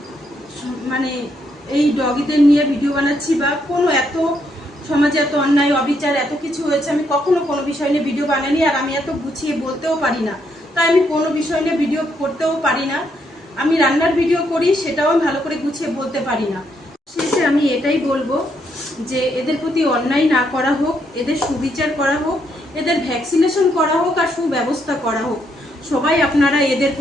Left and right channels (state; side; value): normal; both; correlation 0.75